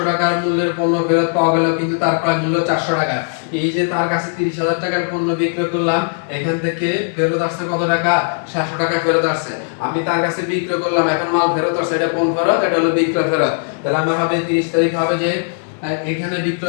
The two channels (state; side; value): silent; right; 67 dB below the other